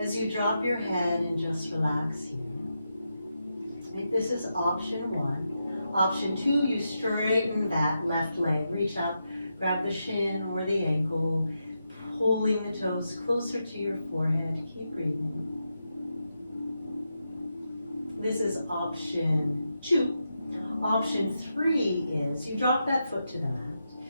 as you drop your head and just relax here. Right, this is option 1. Option 2, you straighten that left leg. Reach up, grab the shin or the ankle, pulling the toes closer to your forehead. Keep breathing. This is option 2. Option 3 is you drop that foot to the mat.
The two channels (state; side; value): inverted; both; correlation -0.86